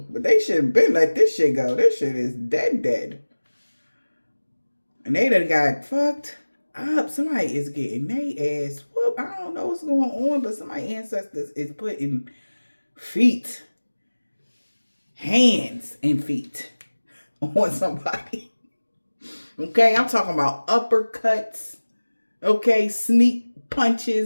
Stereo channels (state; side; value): inverted; both; correlation -1.00